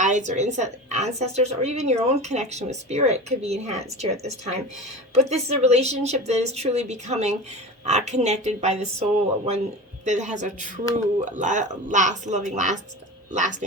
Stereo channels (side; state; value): both; normal; correlation 0.31